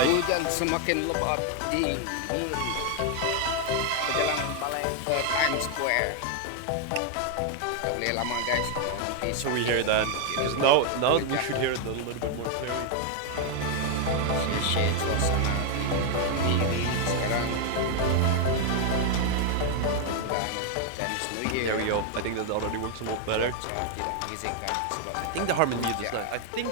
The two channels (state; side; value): different; both; correlation 0.01